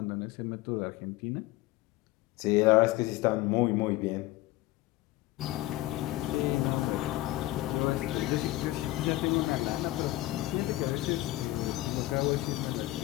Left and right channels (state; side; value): quieter; right; 17.4 dB